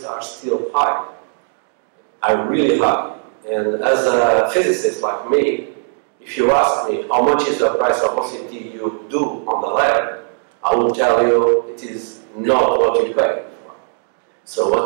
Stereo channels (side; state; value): left; silent; digital silence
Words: are still high, are really high. And as a physicist like me, if you ask me how much is the price of OCT you do on the lab, I will tell you it is not what you pay for. So